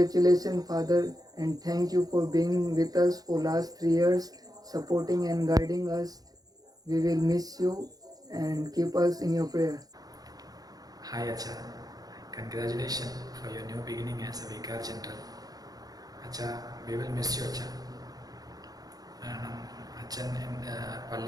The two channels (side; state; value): left; late; 0.18 ms